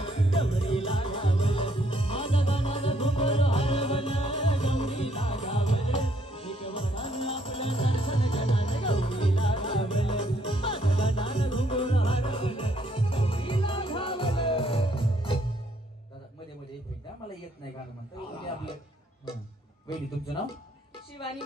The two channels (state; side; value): normal; both; correlation 0.69